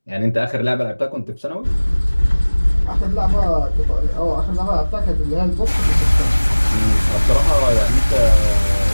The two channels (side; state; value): both; inverted; correlation -1.00